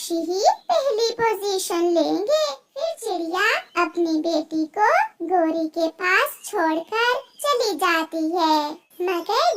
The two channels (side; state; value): both; identical; correlation 1.00